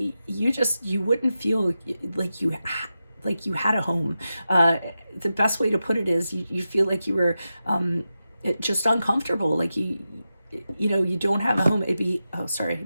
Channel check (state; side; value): inverted; both; correlation -0.91